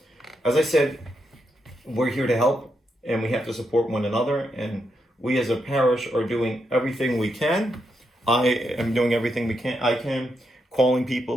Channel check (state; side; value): normal; both; correlation 0.82